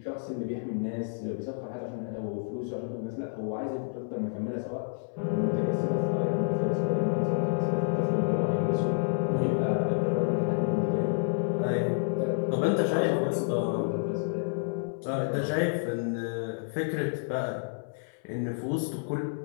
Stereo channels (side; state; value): right; silent; 58 dB below the other